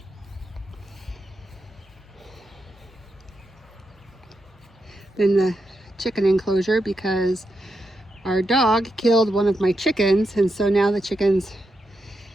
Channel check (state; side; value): normal; both; correlation 0.85